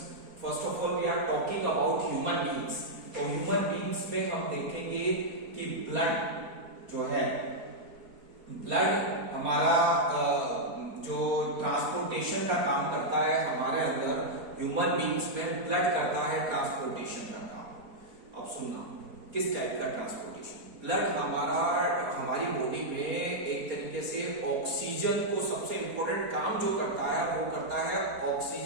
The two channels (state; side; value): late; left; 4.3 ms